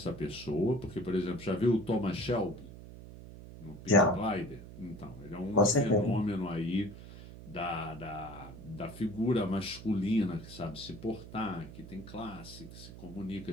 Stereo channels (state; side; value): noise; right; hum, 14 dB below the sound